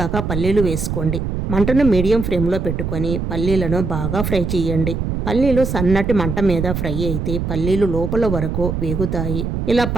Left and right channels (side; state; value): right; noise; rumble, 2 dB below the sound